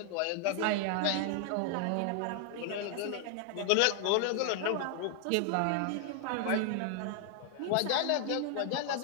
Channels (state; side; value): different; both; correlation 0.00